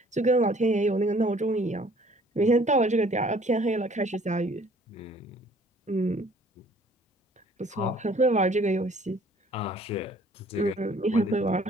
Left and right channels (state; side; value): normal; both; correlation 0.56